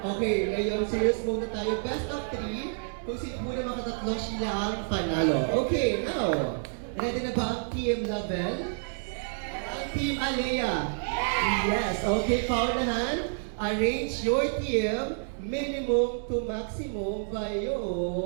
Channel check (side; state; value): left; silent; digital silence